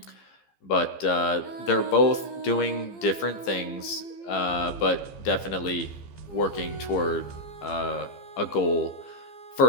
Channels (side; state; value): right; late; 15 ms